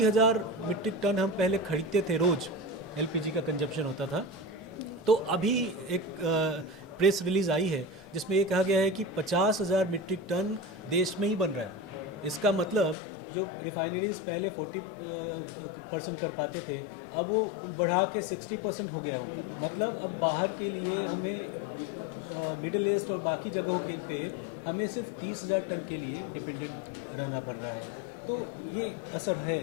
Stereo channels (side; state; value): right; drops out; at 13.0 s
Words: मीट्रिक टन हम पहले खरीदते थे, रोज़ एलपीजी का कंजप्शन होता था, तो अभी एक प्रेस रिलीज़ आई है जिसमें ये कहा गया है कि 50,000 मीट्रिक टन देश में ही बन रहा है। इसका मतलब जो रिफाइनरीज़ पहले 40% कर पाते थे, अब वो बढ़ा के 60% हो गया है उनका। मतलब अब बाहर के लिए हमें मिडिल ईस्ट और बाकी जगहों के पे हमें सिर्फ 30,000 टन के लिए डिपेंडेंट रहना पड़ रहा है। तो ये असर